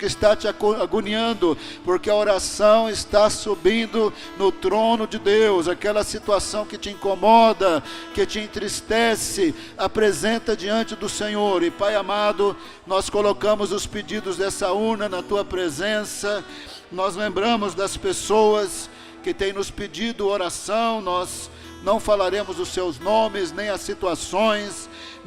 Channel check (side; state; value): both; identical; correlation 1.00